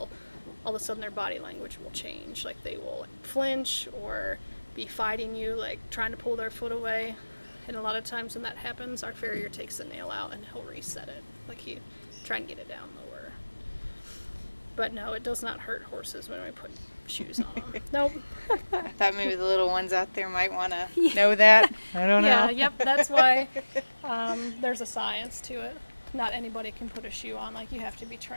all of a sudden their body language will change. Like they will flinch or be fighting you, like trying to pull their foot away. And a lot of times when that happens, our farrier takes the nail out and he'll reset it. Like he try and get it down lower. But no, it does not hurt horses when we put shoes on them. Nope. I thought maybe the little ones out there might want to know that. I don't Yeah, know. yep, that's why there's a science to it. Not anybody can put a shoe on, like you have to be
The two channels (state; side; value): inverted; both; correlation -1.00